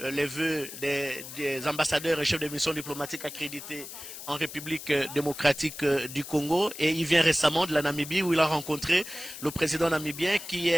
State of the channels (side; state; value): left; noise; hiss, 11 dB below the sound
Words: vœux des ambassadeurs et chefs de mission diplomatique accrédités en République démocratique du Congo. Et il vient récemment de la Namibie où il a rencontré le président namibien qui